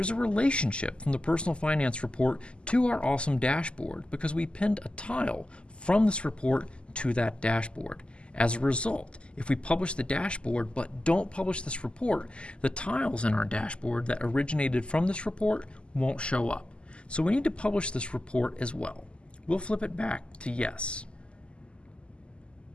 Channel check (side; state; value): right; late; 0.052 ms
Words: a relationship from the personal finance report to our awesome dashboard because we pinned a tile from this report to that dashboard. As a result, if we publish the dashboard but don't publish this report, the tiles in our dashboard that originated from this report won't show up. So we need to publish this report as well. We'll flip it back to yes.